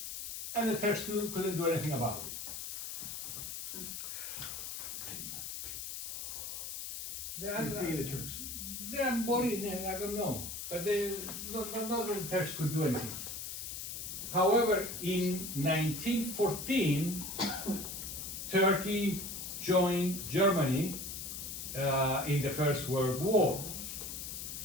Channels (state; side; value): noise; left; hiss, 6 dB below the sound